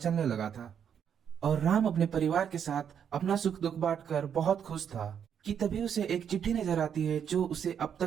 लगा था और राम अपने परिवार के साथ अपना सुख दुख बांटकर बहुत खुश था कि तभी उसे एक चिट्ठी नजर आती है जो उसे अब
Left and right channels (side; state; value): left; quieter; 8.2 dB